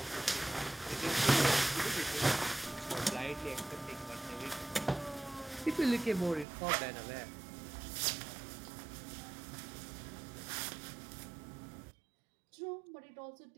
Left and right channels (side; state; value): left; drops out; at 6.5 s